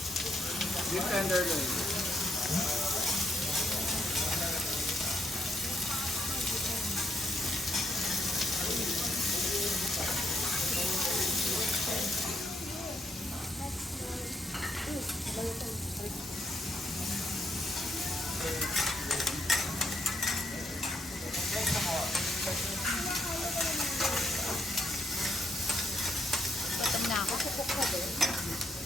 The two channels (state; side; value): normal; both; correlation 0.77